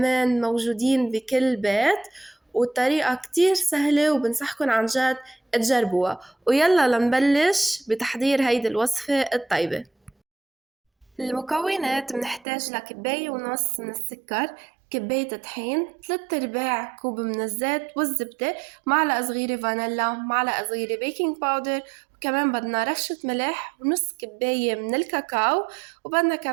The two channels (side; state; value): left; drops out; at 12.5 s